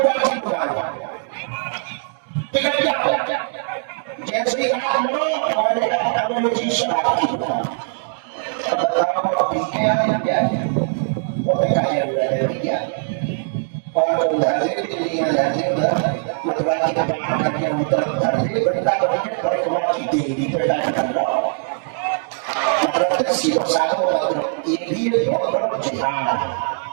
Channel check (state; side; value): silent; left; digital silence